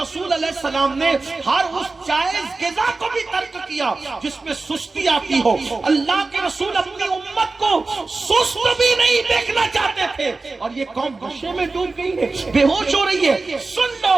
علیہ السلام نے ہر اس جائز غذا کو بھی ترک کیا جس میں سستی آتی ہو۔ اللہ کے رسول اپنی امت کو سست بھی نہیں دیکھنا چاہتے تھے، اور یہ قوم نشے میں ڈوب گئی ہے، بے ہوش ہو رہی ہے۔ سن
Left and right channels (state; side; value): quieter; left; 3.7 dB